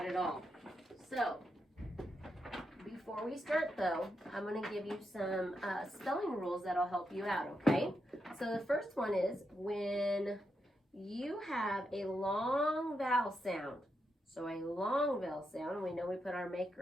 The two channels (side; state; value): both; normal; correlation 0.84